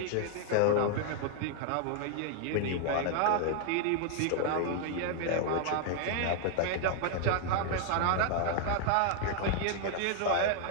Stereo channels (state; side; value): different; both; correlation 0.00